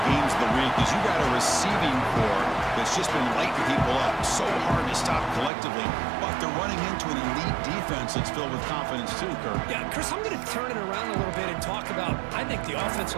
games of the week is you got a receiving core that's just been lighting people up. So hard to stop collectively, but they're running into an elite defense that's filled with confidence too, Kirk. Yeah, Chris, I'm going to turn it around a little bit and talk about, I think, the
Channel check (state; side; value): drops out; left; at 5.5 s